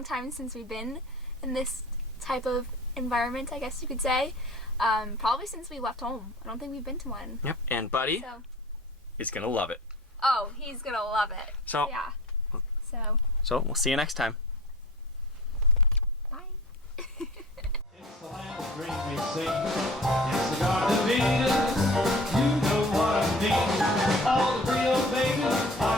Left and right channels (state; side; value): normal; both; correlation 0.43